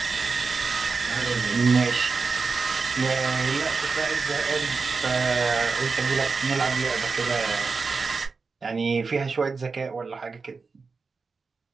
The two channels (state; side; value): quieter; left; 4.6 dB